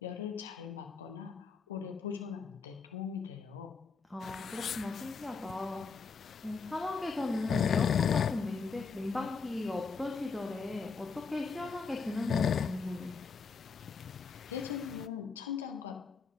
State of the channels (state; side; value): quieter; right; 5.1 dB